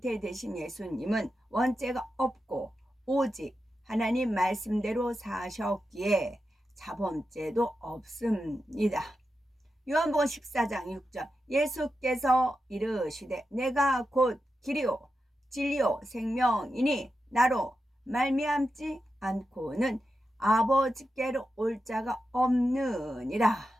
예수님은 원죄가 없고 오직 하나님 말씀대로 사셨기에 자범죄도 없습니다. 요한복음 14장 6절, 예수께서 이르시되 내가 곧 길이요 진리요 생명이니 나로 말미암지 않고는 아버지께로 올 자가 없느니라.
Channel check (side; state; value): both; normal; correlation 0.89